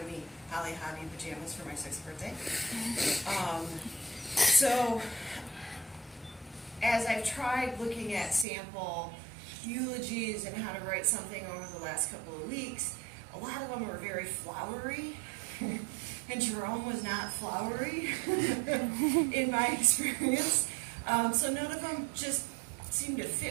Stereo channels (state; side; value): drops out; left; at 8.5 s